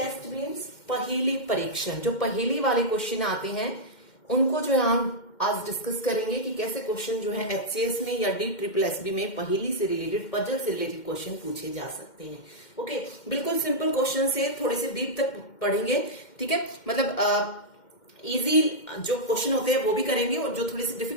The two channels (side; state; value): right; late; 2.1 ms